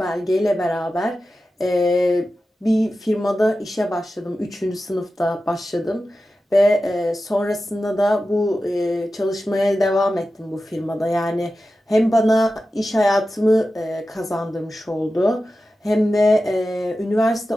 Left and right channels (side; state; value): both; normal; correlation 0.93